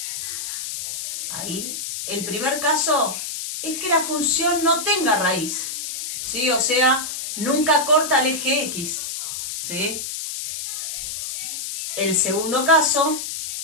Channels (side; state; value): left; noise; hiss, 5 dB below the sound